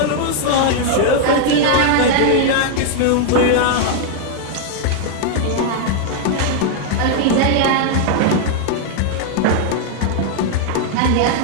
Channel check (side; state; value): both; different; correlation 0.00